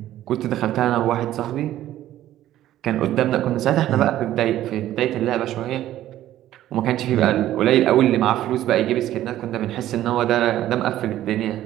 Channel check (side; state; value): left; quieter; 13.2 dB